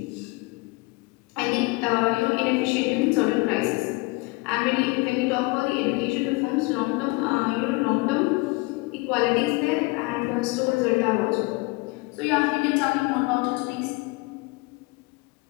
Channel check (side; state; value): right; quieter; 25.0 dB